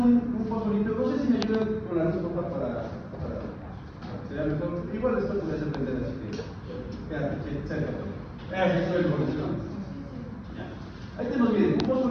fosfolito. No sé si me ayudan con la luz para que sea mejor. Igual esto puede depender, así que quédate cerca. Eso es el fosfolito. Ahí tenemos, miren, un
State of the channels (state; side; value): identical; both; correlation 1.00